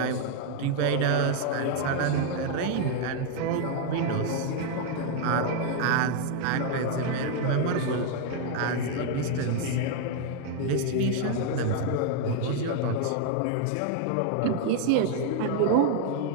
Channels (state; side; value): different; both; correlation 0.00